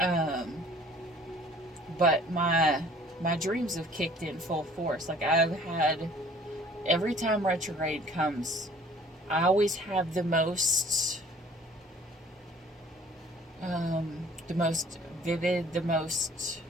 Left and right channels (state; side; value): normal; both; correlation 0.53